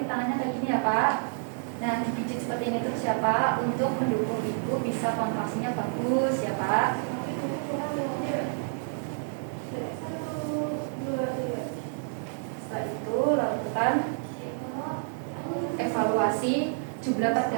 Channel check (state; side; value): silent; left; 59 dB below the other